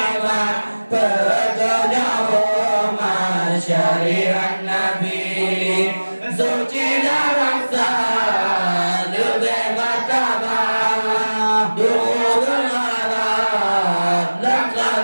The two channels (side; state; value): both; inverted; correlation -1.00